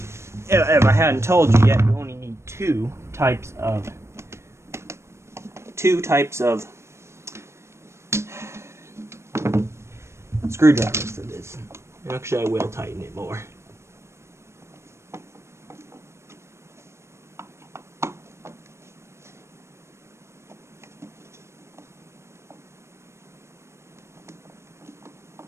if I hadn't told you yet, you only need two types of screwdrivers for this. Actually, I will tighten it more.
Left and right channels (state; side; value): late; left; 0.13 ms